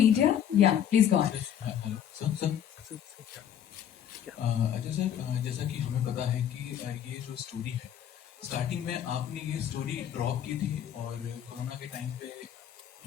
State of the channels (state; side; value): quieter; right; 9.6 dB